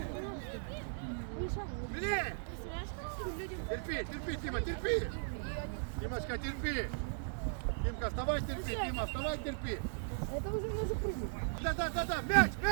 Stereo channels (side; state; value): left; silent; digital silence